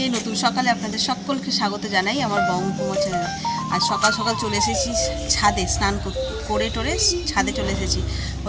নতুন সকালে আপনাদের সকলকে স্বাগত জানাই আমার বঙ্গকুমার চ্যানেলে। আজ সকাল সকাল চলে এসেছি ছাদে, স্নান করে টোরে ছাদে চলে এসেছি।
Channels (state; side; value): identical; both; correlation 1.00